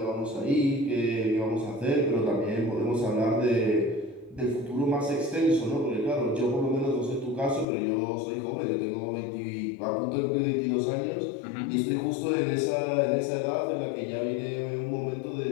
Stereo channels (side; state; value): right; drops out; at 7.7 s